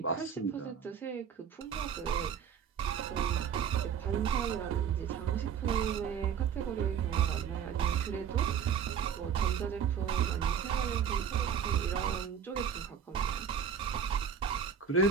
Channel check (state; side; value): quieter; left; 7.6 dB